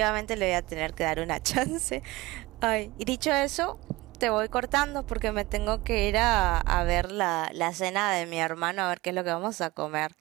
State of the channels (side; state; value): left; quieter; 20.1 dB